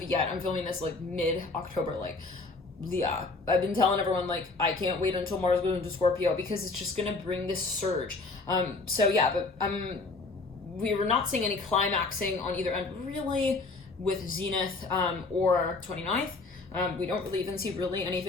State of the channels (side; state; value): right; quieter; 3.6 dB